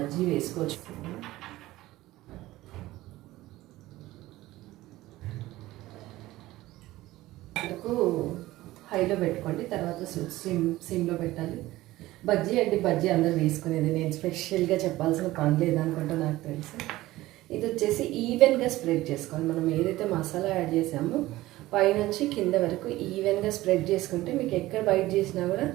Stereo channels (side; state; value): left; quieter; 17.2 dB